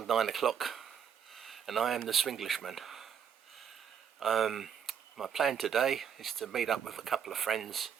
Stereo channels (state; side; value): quieter; left; 8.1 dB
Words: 9 o'clock and I am the Swinglishman. My plan today is to meet up with a couple of friends,